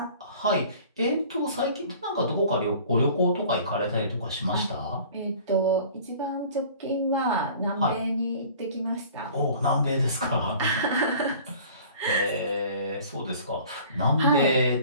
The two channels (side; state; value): both; inverted; correlation -0.47